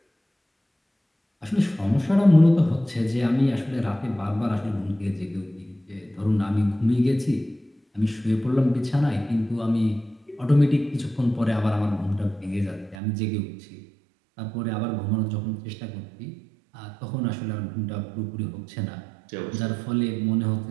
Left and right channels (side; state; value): left; drops out; at 13.0 s